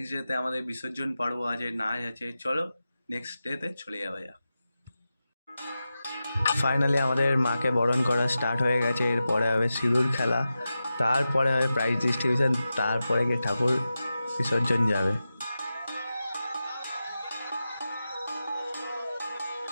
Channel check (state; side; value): inverted; both; correlation -0.92